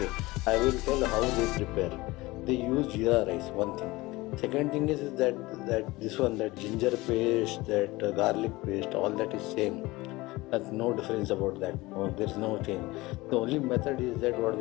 I will tell how they prepare. They use jeera rice, one thing. Second thing is that this one, that ginger paste, that garlic paste, all that is same. That's no difference about that. There is no change. The only method is that what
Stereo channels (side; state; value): right; quieter; 20.8 dB